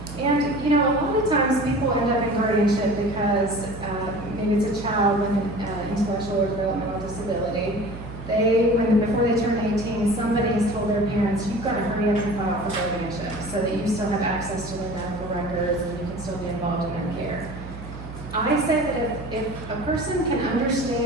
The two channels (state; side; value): noise; right; hum, 12 dB below the sound